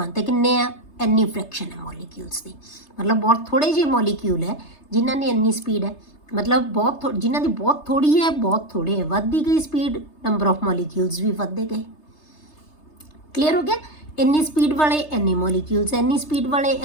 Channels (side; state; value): right; late; 3.3 ms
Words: ते किन्ने आ, इन्नी फ्रैक्शन है मॉलिक्यूल्स की, मतलब बहुत थोड़े जे मॉलिक्यूल है जिन्हां ने इन्नी स्पीड है। मतलब बहुत जिन्हां दी बहुत थोड़ी है, बहुत थोड़े है, वधदी गई स्पीड, नंबर ऑफ मॉलिक्यूल्स भी वधदे गए। क्लीयर हो गया? इन्नी स्पीड वाले इन्ने मॉलिक्यूल्स है, इन्नी स्पीड वाले